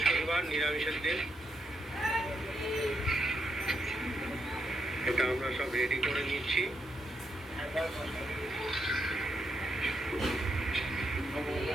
নিরামিষের দিন, এটা আমরা সব রেডি করে নিচ্ছি।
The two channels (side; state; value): both; normal; correlation 0.80